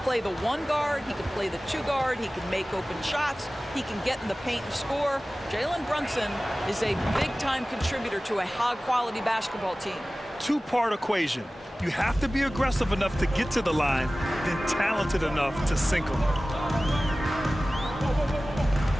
play the 1 guard. He can play the 2 guard. He can make open shots. He can get in the paint and score. Jalen Brunson is a big-time contributor to a high-quality basketball team. 2-part equation. You have to be aggressive enough to get to the line, then talented enough to sink them.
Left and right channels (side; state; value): both; normal; correlation 0.97